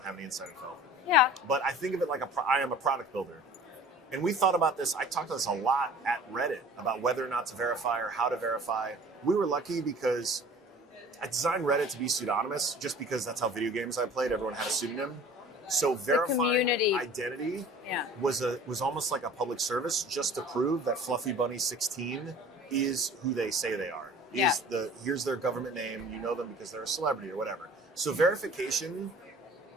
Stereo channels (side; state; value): both; normal; correlation 0.45